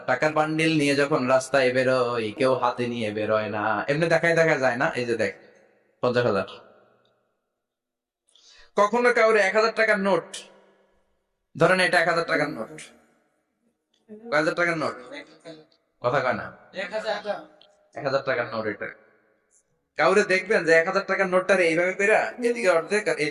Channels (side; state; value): both; identical; correlation 1.00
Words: টাকার বান্ডিল নিয়ে যখন রাস্তায় বেরোয়, কেউ হাতে নিয়ে বেরোয় না, এমনি দেখায় দেখা যায় না। এই যে দেখ, 50,000। কখনো কাউরে 1,000 টাকার নোট, ধরেন এটা 1,000 টাকার নোট, 1,000 টাকার নোট, কথা কয় না, 1,000 টাকার নোট। এটা কাউরে দেখবেন যে 1,000 টাকার নোটটা এইভাবে পেরা, এদিকে অর্ধেক আর